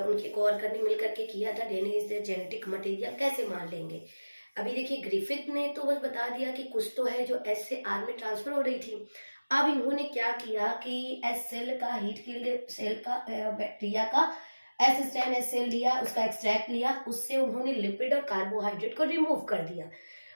कोवर्कर ने मिलकर के किया था। DNA is the genetic material कैसे मान लेंगे। अभी देखिए ग्रिफिथ ने तो बस बता दिया कि कुछ तो है जो एस से आर में ट्रांसफर हो रही थी। अब इन्होंने क्या किया कि एस सेल का, हीट किल्ड सेल का, बैक्टीरिया का एस स्ट्रेन एस सेल लिया, उसका एक्सट्रैक्ट लिया, उससे उन्होंने लिपिड और कार्बोहाइड्रेट को रिमूव कर दिया।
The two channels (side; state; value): both; inverted; correlation -1.00